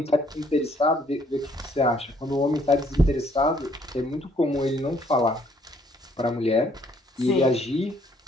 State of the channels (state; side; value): normal; both; correlation 0.65